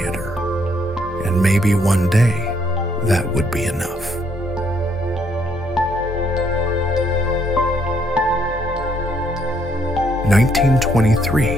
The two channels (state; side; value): normal; both; correlation 0.71